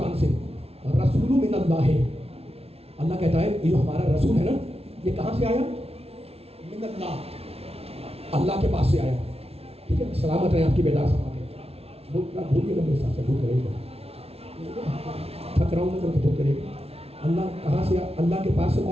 سے، رسول من اللہ. اللہ کہتا ہے یہ جو ہمارا رسول ہے نا، یہ کہاں سے آیا؟ من اللہ، اللہ کے پاس سے آیا. ٹھیک ہے، سلامت رہیں آپ کی بیدار سماعتیں. بھولیے گا میرے ساتھ سے، بھول کرے گا، تھک رہا ہوں میں تو بھول کرے گا. اللہ کہاں سے آیا؟ اللہ کے پاس سے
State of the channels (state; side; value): late; left; 0.29 ms